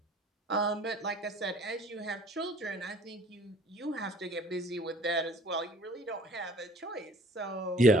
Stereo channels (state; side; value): normal; both; correlation 0.53